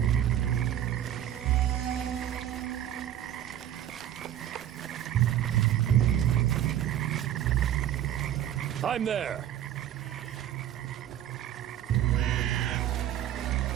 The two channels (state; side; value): quieter; left; 11.2 dB